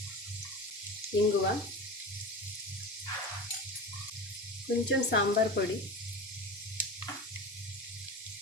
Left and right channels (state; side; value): normal; both; correlation 0.29